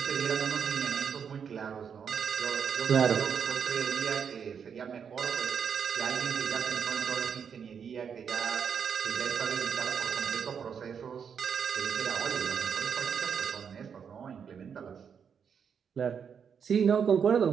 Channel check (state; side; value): quieter; left; 7.1 dB